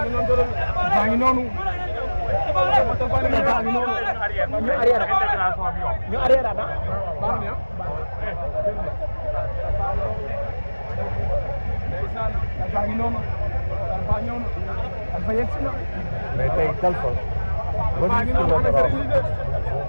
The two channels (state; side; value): inverted; both; correlation -1.00